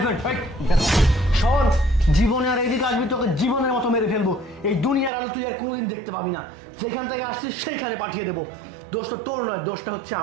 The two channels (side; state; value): left; drops out; at 5.1 s